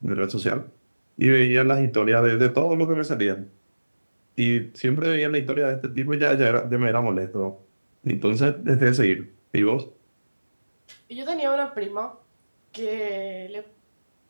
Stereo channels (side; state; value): both; inverted; correlation -1.00